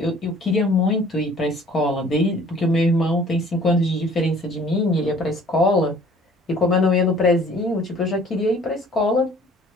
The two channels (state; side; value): normal; both; correlation 0.53